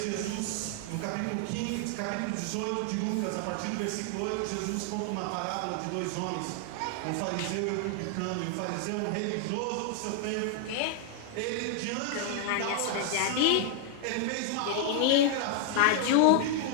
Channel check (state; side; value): different; both; correlation 0.00